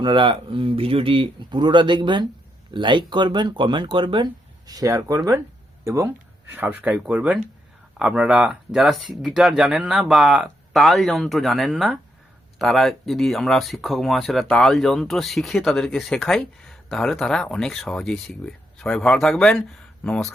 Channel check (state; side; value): normal; both; correlation 0.80